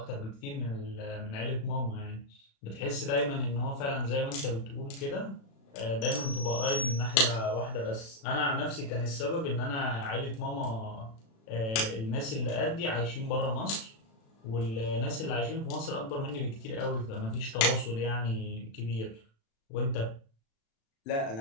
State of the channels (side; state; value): right; late; 36 ms